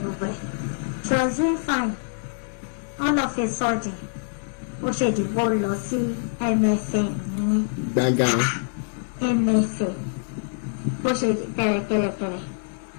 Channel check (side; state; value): right; silent; digital silence